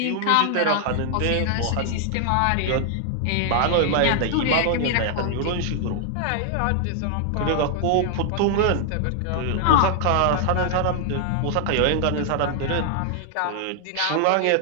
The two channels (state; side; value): different; both; correlation 0.00